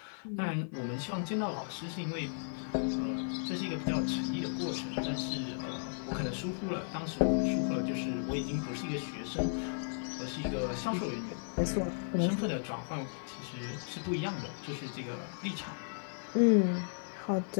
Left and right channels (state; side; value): silent; right; 54 dB below the other